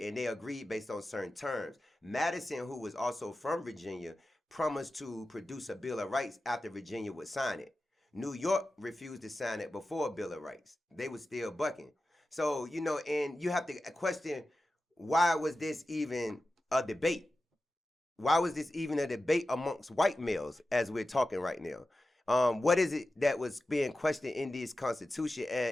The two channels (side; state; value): both; normal; correlation 0.93